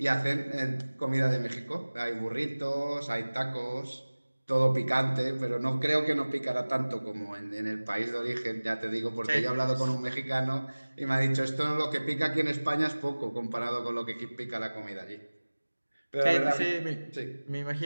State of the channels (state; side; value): inverted; both; correlation -1.00